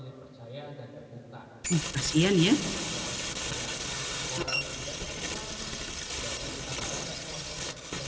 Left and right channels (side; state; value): both; identical; correlation 1.00